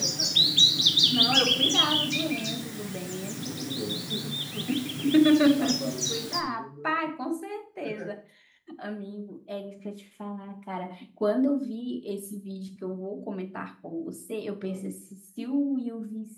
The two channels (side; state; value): both; identical; correlation 1.00